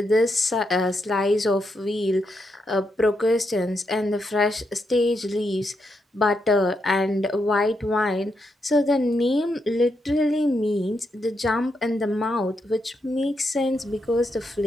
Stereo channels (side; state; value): both; normal; correlation 0.82